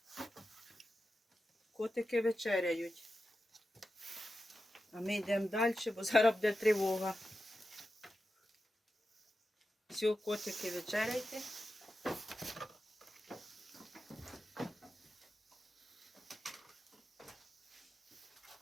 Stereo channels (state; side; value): normal; both; correlation 0.91